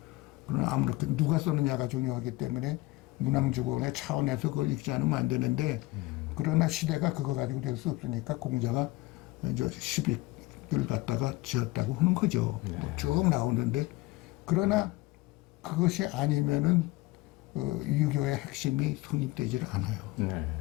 그러나 아무렇게 누가 쓰느냐가 중요하기 때문에 문항주공의 차원에서 그걸 읽지 않으면 안 되는데 그러나 시대가 그거 가지고 될 수 없으니까 공자가 이제 시빅을 갖다가 지었다고 하는 거죠. 뭐쭉 나오는데 그러나 그것이 아니면은 유교의 핵심이 성립되지를 않아요. 네.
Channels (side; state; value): right; quieter; 20.3 dB